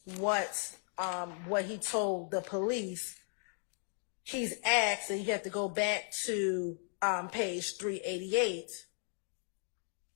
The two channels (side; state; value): right; silent; 54 dB below the other